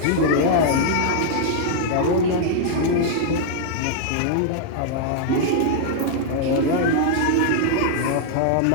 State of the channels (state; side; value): different; both; correlation -0.01